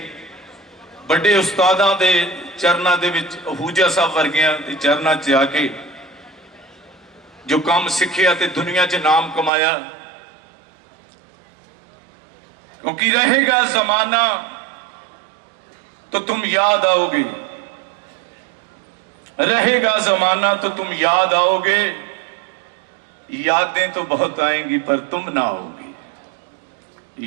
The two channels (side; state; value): left; drops out; at 9.5 s